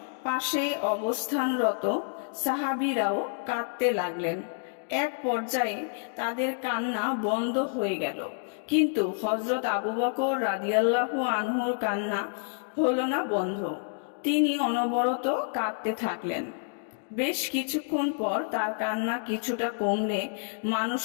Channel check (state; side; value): silent; right; digital silence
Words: পাশে অবস্থানরত সাহাবীরাও কাঁদতে লাগলেন। এক পর্যায়ে তাদের কান্না বন্ধ হয়ে গেল, কিন্তু হযরত আবু বকর রাদিয়াল্লাহু আনহুর কান্না হলো না বন্ধ। তিনি অনবরত কাঁদতে থাকলেন। বেশ কিছুক্ষণ পর তার কান্না কিছুটা কমলে